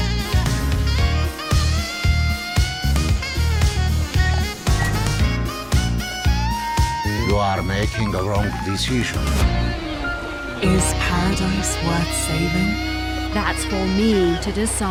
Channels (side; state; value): both; identical; correlation 1.00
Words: You are making a wrong decision. Is paradise worth saving? That's for me to